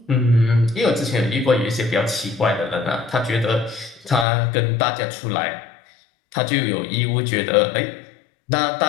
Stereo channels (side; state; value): right; drops out; at 4.2 s